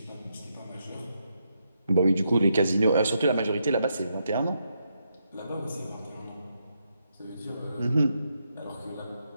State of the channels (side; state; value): both; inverted; correlation -0.81